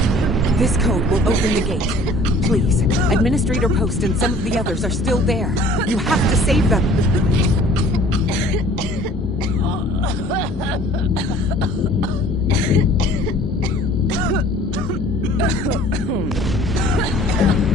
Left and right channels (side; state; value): both; normal; correlation 0.51